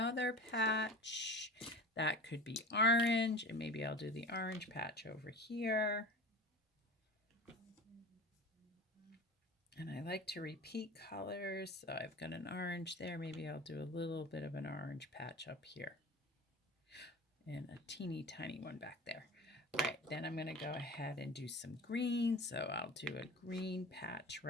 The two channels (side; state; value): both; normal; correlation 0.35